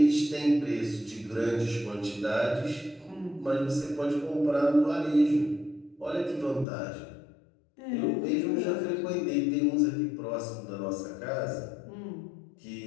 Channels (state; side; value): drops out; right; at 6.7 s